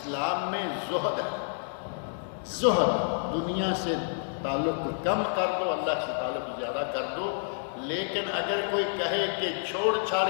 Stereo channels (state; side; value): silent; right; digital silence